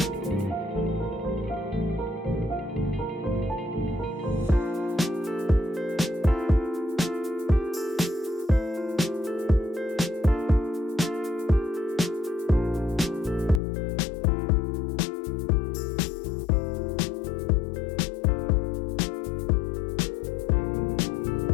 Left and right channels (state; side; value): drops out; right; at 13.6 s